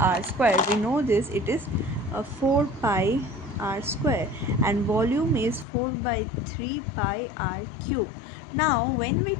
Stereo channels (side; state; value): right; drops out; at 5.7 s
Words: square. We know this, it is 4 pi r square, and volume is 4 by 3 pi r cube. Now when we